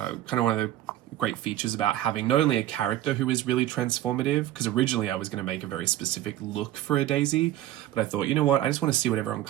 of one of the great features about having not only a character who is really transformative, because originally I was going to make a very specific look for a Daisy, but I thought, you know what, I just want to see what everyone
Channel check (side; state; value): left; quieter; 13.7 dB